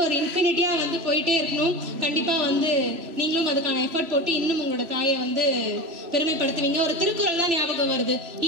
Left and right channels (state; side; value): late; left; 3.0 ms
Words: ஒரு இன்ஃபினிட்டியா வந்து போயிட்டே இருக்கணும். கண்டிப்பா வந்து நீங்களும் அதுக்கான எஃபர்ட் போட்டு இன்னும் உங்களோட தாயை வந்து பெருமைப்படுத்துவீங்க. ஒரு திருக்குறள் தான் ஞாபகம் வருது.